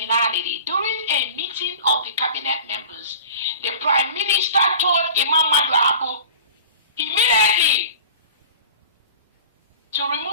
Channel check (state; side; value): inverted; both; correlation -0.40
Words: during a meeting of the cabinet members, the Prime Minister told Imam Madu immediately to